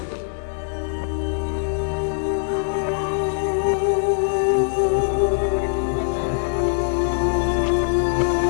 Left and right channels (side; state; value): right; silent; 64 dB below the other